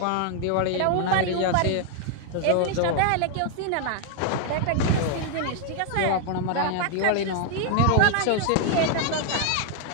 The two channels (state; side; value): different; both; correlation 0.00